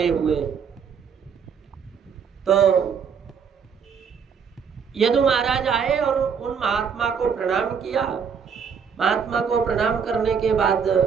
हुए। तो यदु महाराज आए और उन महात्मा को प्रणाम किया। महात्मा को प्रणाम करने के बाद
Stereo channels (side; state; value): left; quieter; 6.7 dB